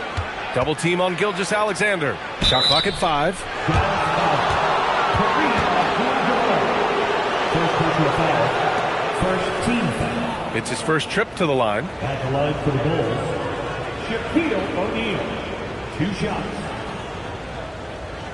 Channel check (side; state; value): both; identical; correlation 1.00